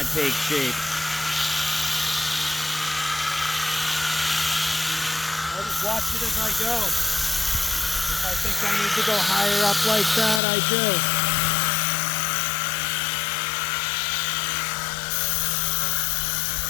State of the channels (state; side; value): drops out; right; at 10.4 s